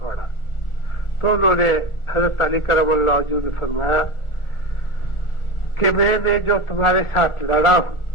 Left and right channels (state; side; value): late; right; 1.4 ms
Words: تو انہوں نے حضرت علی کرم اللہ وجہہ نے فرمایا کہ میں نے جو تمہارے ساتھ لڑا ہوں